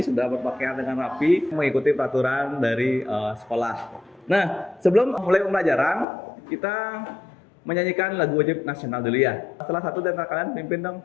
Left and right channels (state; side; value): drops out; right; at 6.1 s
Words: sudah berpakaian dengan rapi mengikuti peraturan dari sekolah. Nah, sebelum mulai pembelajaran, kita menyanyikan lagu wajib nasional dulu ya. Salah satu dari kalian pimpin dong.